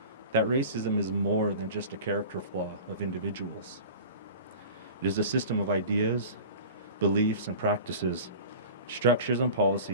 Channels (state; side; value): inverted; both; correlation -0.38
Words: that racism is more than just a character flaw of individuals. It is a system of ideas, beliefs, and practices, structures and